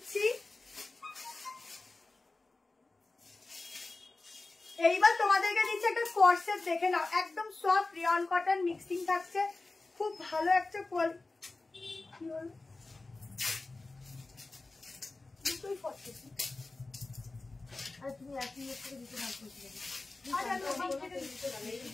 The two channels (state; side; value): quieter; right; 3.3 dB